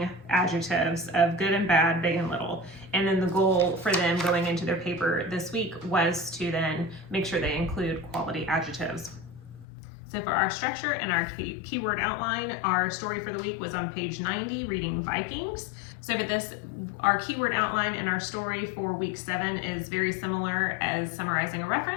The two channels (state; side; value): drops out; right; at 9.7 s